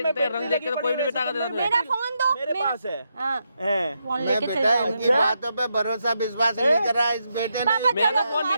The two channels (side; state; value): both; inverted; correlation -0.83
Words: तेरे रंग बेटी देख के लगी तो कोई पड़ी भी है, बिता कर वैसे देता तुम्हें मेरा फोन दो, मेरे पास है हाँ, हैं। फोन मैं लेके चल बेटा जाऊंगी। इनकी बातों पे भरोसा विश्वास नहीं करा इस बेटे ने। पापा, मेरा चलो, फोन आप